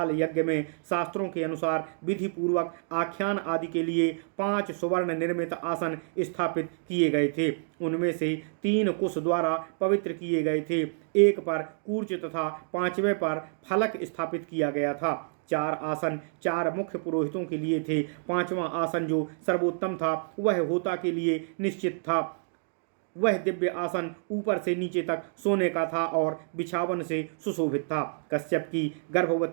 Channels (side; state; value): left; silent; digital silence